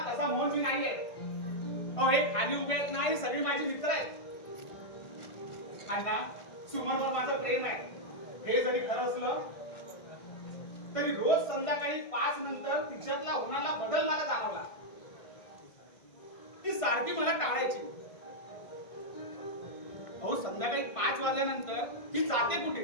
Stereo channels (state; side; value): late; right; 1.5 ms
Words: तसा मोहन मी नाही आहे. अहो हे खाली उभे आहेत ना, हे सगळी माझी मित्र आहेत. अण्णा सुमनवर माझं प्रेम आहे. हे जरी खरं असलं तरी रोज संध्याकाळी 5 नंतर तिच्यातला होणारा बदल मला जाणवला. ती सारखी मला टाळायची. अहो संध्याकाळी 5 वाजल्यानंतर ती जाते कुठे?